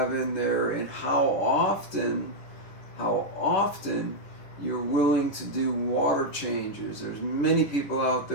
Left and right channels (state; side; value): late; right; 10 ms